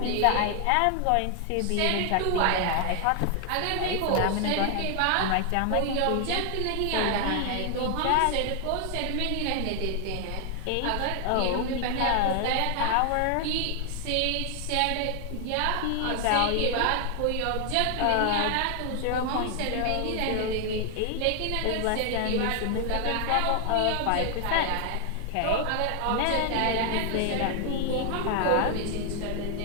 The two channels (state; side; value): different; both; correlation 0.00